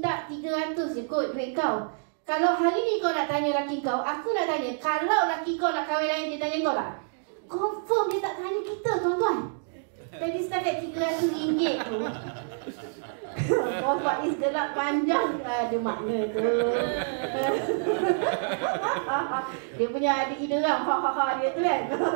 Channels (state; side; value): silent; left; digital silence